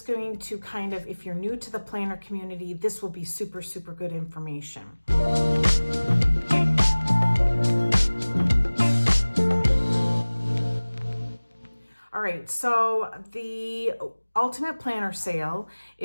going to kind of, if you're new to the planner community, this will be super, super good information. All right, so the Ultimate Planner sale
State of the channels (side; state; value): both; inverted; correlation -1.00